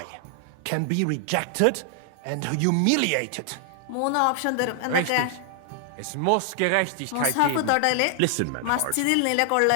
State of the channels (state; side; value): different; both; correlation 0.00